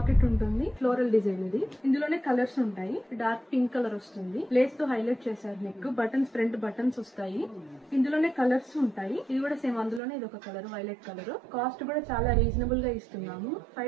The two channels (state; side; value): drops out; left; at 10.0 s